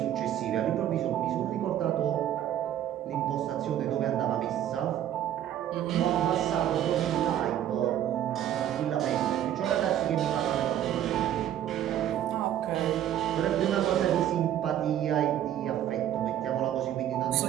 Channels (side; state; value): left; quieter; 11.2 dB